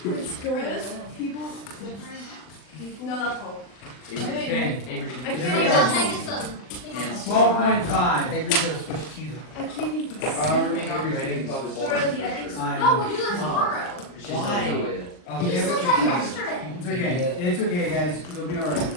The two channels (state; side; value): late; right; 39 ms